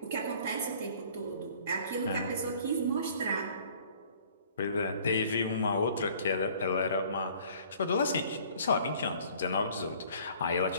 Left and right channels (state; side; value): inverted; both; correlation -0.54